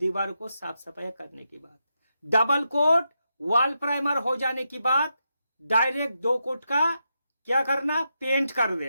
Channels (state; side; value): inverted; both; correlation -0.85